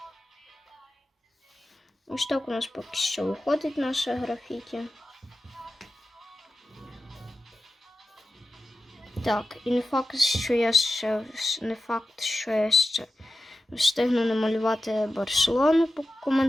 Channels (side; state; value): both; normal; correlation 0.93